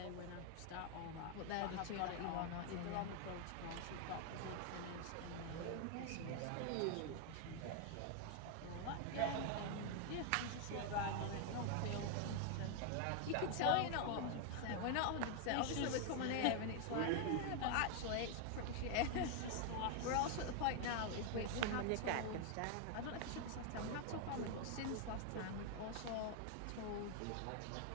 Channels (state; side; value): different; both; correlation 0.00